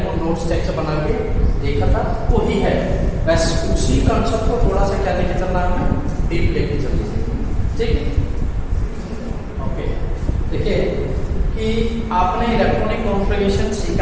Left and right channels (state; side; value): identical; both; correlation 1.00